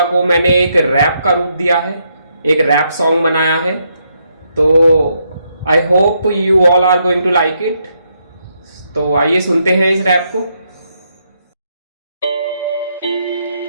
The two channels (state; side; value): inverted; both; correlation -0.77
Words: को मैंने एक रैप का रूप दिया है, एक रैप सॉन्ग बनाया है। तो I hope you all are going to like it. तो आइए सुनते हैं इस रैप को।